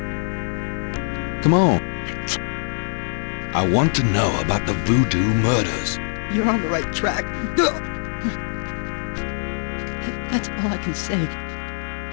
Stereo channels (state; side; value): silent; right; digital silence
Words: Come on. I want to know about the voodoo murders. You're on the right track. That's all I can say.